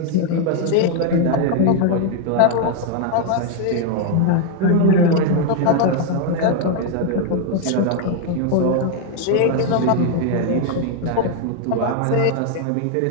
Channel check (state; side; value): different; both; correlation 0.00